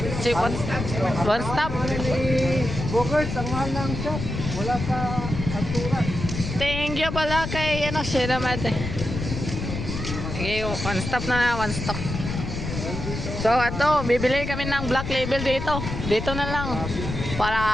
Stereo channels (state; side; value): noise; left; rumble, 5 dB below the sound